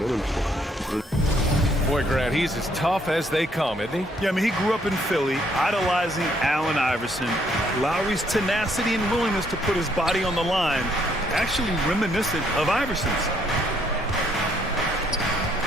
Boy, Grant, he's as tough as they come, isn't he? Yeah, I mean, he grew up in Philly, idolizing Allen Iverson. Lowry's tenacity and willingness to put his body on the line, actually reminiscent of Iverson's.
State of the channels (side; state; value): both; normal; correlation 0.69